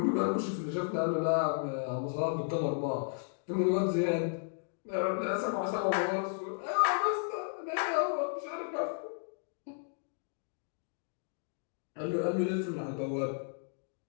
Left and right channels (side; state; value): right; silent; digital silence